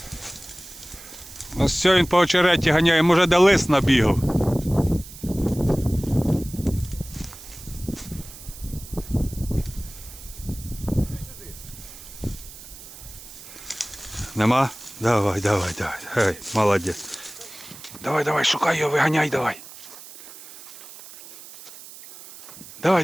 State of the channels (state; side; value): noise; right; hiss, 16 dB below the sound